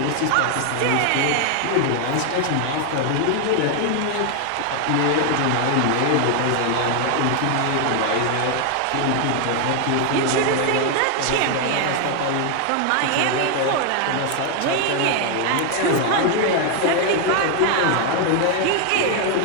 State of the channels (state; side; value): different; both; correlation 0.00